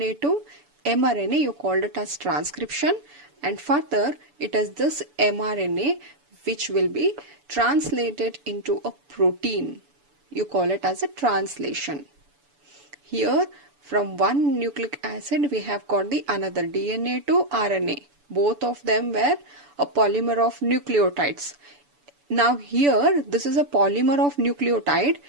to mRNA, you called it as transcription, and further it is this mRNA which will be translated into a protein. You call it as a translation. Here from one nucleic acid we have got the another DNA to RNA. Both of them were a polymer of nucleotides. Now here this is a polymer of nucleotide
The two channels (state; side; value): late; left; 6.9 ms